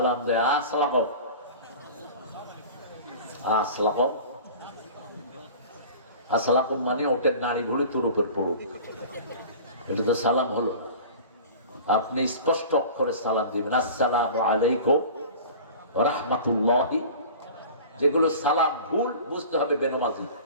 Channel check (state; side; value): inverted; both; correlation -0.39